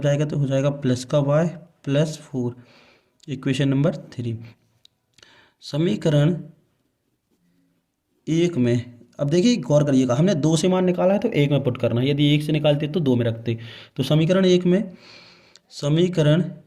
जाएगा तो हो जाएगा प्लस का y प्लस 4, इक्वेशन नंबर 3। समीकरण 1 में अब देखिए गौर करिएगा, हमने 2 से मान निकाला है तो 1 में पुट करना है, यदि 1 से निकालते तो 2 में रखते। तो समीकरण 1 में समीकरण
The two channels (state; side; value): identical; both; correlation 1.00